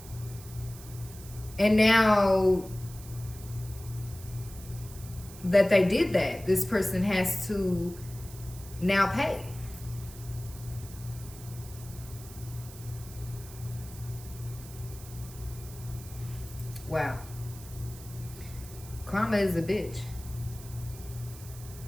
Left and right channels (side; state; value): right; noise; hiss, 17 dB below the sound